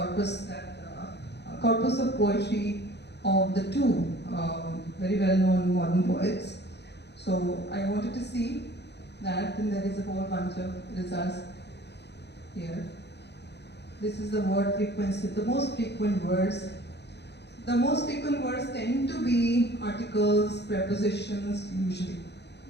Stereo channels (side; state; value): right; late; 0.49 ms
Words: corpus of poetry of the two very well-known modern poets. So I wanted to see that, and there is a whole bunch of results here. This is the word frequency, the most frequent words. The most frequent words tend to be articles, prepositions, usually.